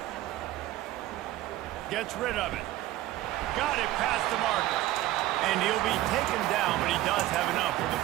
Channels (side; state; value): left; quieter; 15.3 dB